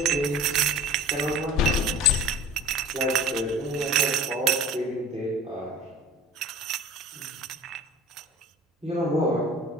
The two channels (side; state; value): both; normal; correlation 0.41